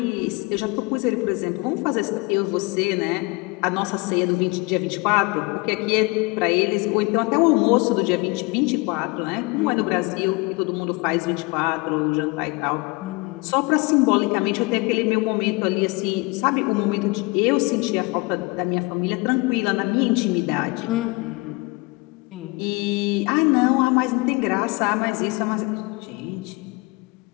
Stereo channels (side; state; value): right; quieter; 26.5 dB